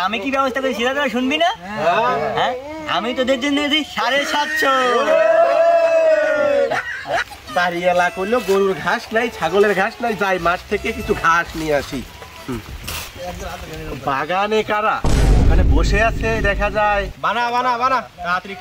আমি কি ব্যবস্থা করেছি সেটা তোরা শুনবি না? হ্যাঁ, আমি তোদের জন্য এনেছি 750। বাড়ি এলা করলো, গরুর ঘাস নাই, ছাগলের ঘাস নাই, যাই মাঠ থেকে কিছু ঘাস নিয়ে আসি। বাগানে কারা ওখানে বসে আছে দেখা যায়। বানা বানা বানা, তাড়াতাড়ি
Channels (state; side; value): identical; both; correlation 1.00